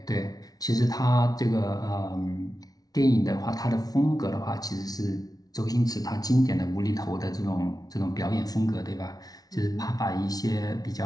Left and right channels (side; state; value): right; late; 0.18 ms